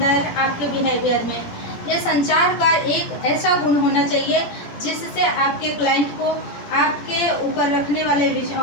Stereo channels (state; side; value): late; right; 17 ms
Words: आपके बिहेवियर में ये संचार का एक ऐसा गुण होना चाहिए जिससे आपके क्लाइंट को, आपके ऊपर रखने वाले